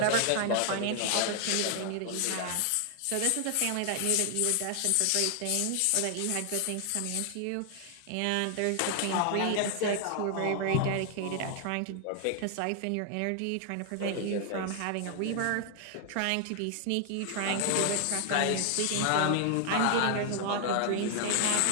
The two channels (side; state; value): both; different; correlation 0.00